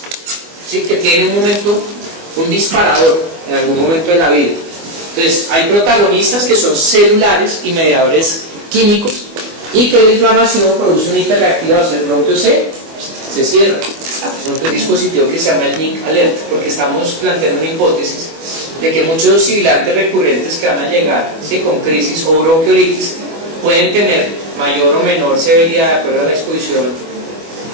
¿sí?, que tiene un disparador en algún momento de la vida. Entonces, hay protagonistas que son celulares y mediadores químicos, y que la inflamación produce una hiperreactivación. El bronquio se cierra. Un dispositivo que se llama el NIC Alert, porque estamos planteando una hipótesis de que muchos sibilantes recurrentes que van a llegar, ¿sí?, con crisis o bronquiolitis pueden tener mayor o menor severidad de acuerdo a la exposición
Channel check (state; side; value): late; left; 24 ms